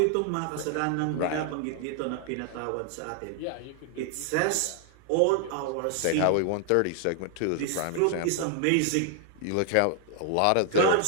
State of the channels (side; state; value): both; different; correlation 0.00